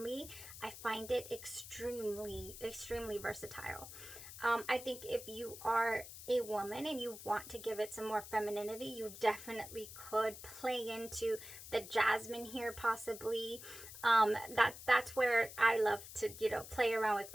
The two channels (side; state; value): left; noise; hiss, 13 dB below the sound